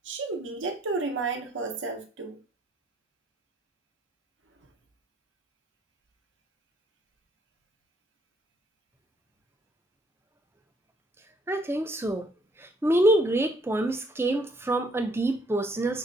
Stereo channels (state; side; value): normal; both; correlation 0.66